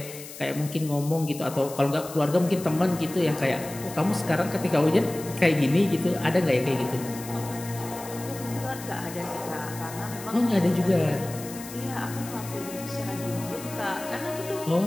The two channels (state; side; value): noise; left; hiss, 13 dB below the sound